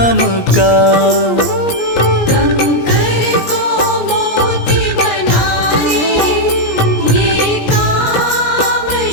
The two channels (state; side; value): late; right; 17 ms